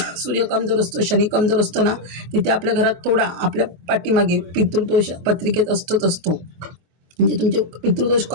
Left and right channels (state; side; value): late; left; 23 ms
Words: सूर्य कमजोर असतो, शनी कमजोर असतो ना, तिथे आपल्या घरात थोडा आपल्या पाठीमागे पितृदोष पत्रिकेत असतो. म्हणजे तुमचे पितृदोष